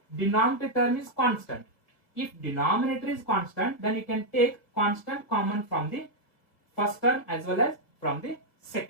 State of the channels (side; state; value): right; late; 2.0 ms